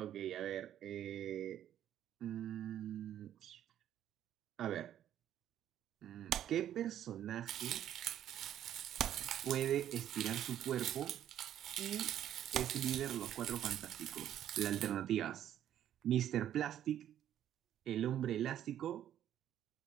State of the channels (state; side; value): quieter; left; 11.0 dB